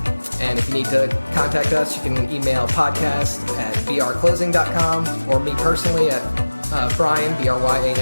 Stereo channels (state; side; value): inverted; both; correlation -1.00